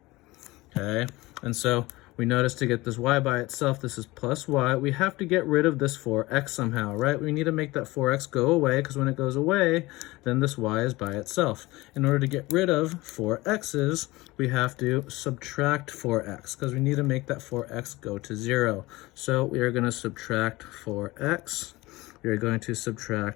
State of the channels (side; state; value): right; quieter; 20.5 dB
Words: Okay, and so we notice to get this y by itself, this is plus y. We have to get rid of this 4x somehow, right? We need to make that 4x go away, because when it goes away, then this y is by itself. In order to get rid of 4x's, we have to subtract 4x, because we need to make that 4x go to 0. So we are going to subtract 4x. We are going to